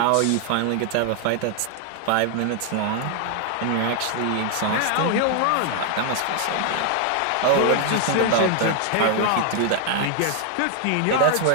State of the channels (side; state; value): both; different; correlation 0.00